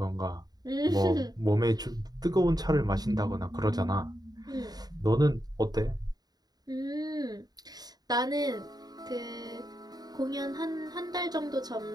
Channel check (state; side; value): late; left; 0.19 ms